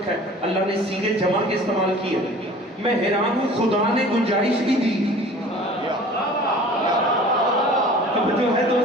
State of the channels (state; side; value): normal; both; correlation 0.45